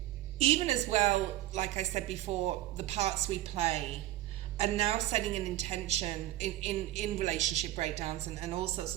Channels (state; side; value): quieter; left; 14.6 dB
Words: even as well, like I said before, the parts we play, and now setting an intention in relationship breakdowns and all sorts